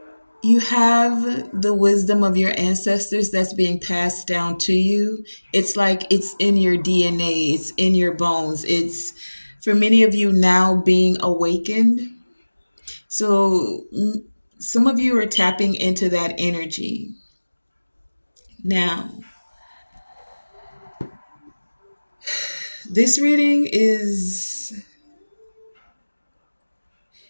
you have the wisdom of your ancestors that's being passed down to you. It's like it's in your DNA, it's in your bones. It's for many of you now being awakened. So some of you are tapping into that energy now. This reading is,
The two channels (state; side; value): inverted; both; correlation -1.00